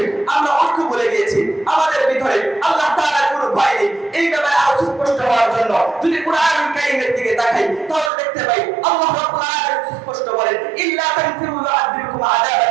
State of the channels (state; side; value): drops out; left; at 8.1 s